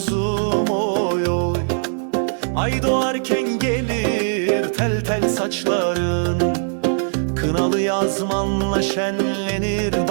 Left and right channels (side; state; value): left; silent; digital silence